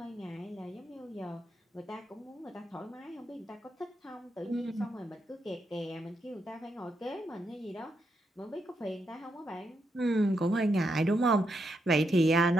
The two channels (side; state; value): both; normal; correlation 0.82